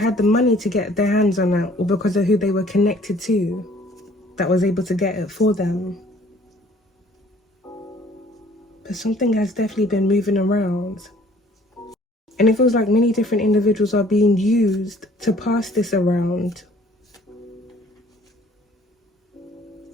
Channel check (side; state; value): both; normal; correlation 0.56